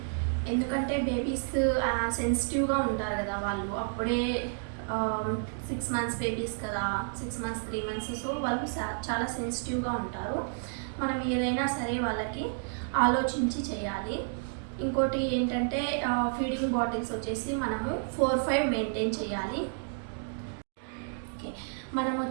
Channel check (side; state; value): left; silent; digital silence